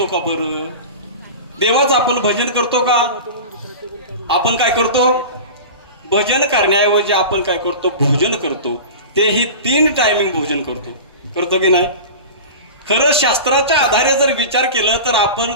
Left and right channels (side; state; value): both; inverted; correlation -0.32